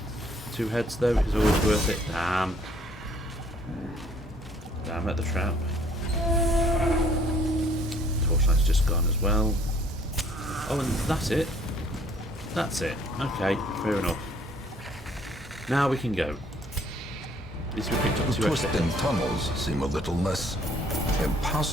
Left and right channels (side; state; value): both; normal; correlation 0.61